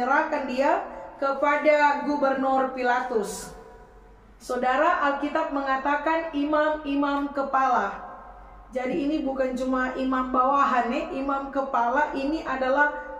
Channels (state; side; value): identical; both; correlation 1.00